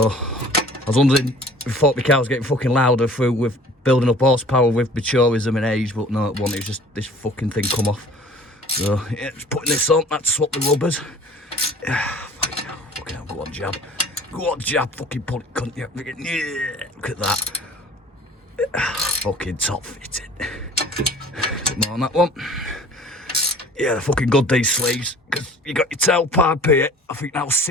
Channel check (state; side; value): normal; both; correlation 0.48